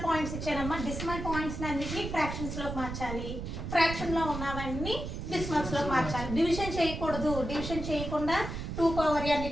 పాయింట్స్ ఇచ్చానమ్మా. డెసిమల్ పాయింట్స్ అన్నిటిని ఫ్రాక్షన్స్ లోకి మార్చాలి. ఫ్రాక్షన్ లో ఉన్నవన్నీ డెసిమల్స్ లోకి మార్చాలి. డివిజన్ చేయకూడదు. డివిజన్ చేయకుండా 2 పవర్ n,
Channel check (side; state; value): right; noise; rumble, 6 dB below the sound